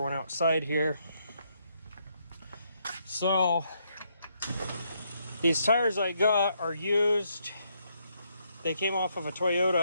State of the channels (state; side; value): inverted; both; correlation -0.75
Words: outside here. So these tires I got are used. They came off of a